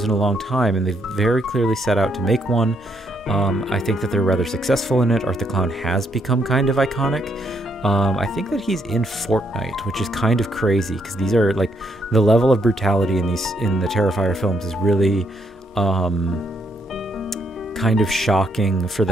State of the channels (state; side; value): normal; both; correlation 0.75